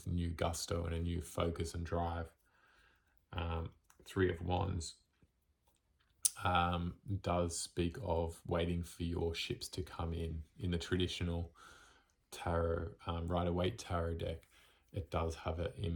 new gusto and a new focus and drive. Three of Wands does speak of waiting for your ships to come in the traditional tarot, Rider-Waite tarot deck. it does have an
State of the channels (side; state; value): both; identical; correlation 1.00